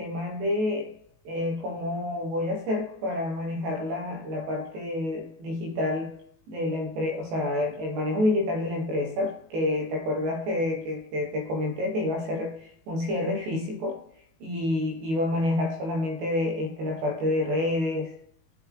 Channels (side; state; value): left; late; 19 ms